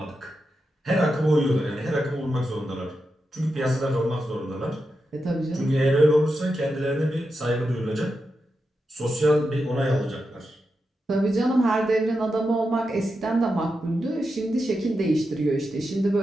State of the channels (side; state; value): both; normal; correlation 0.88